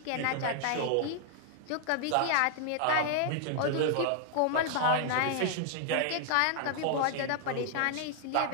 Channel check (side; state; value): both; different; correlation 0.00